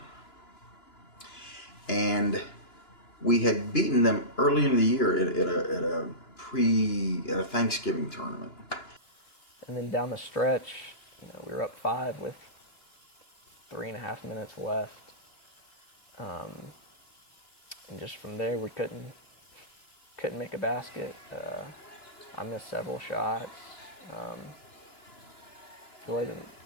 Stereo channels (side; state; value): right; late; 2.9 ms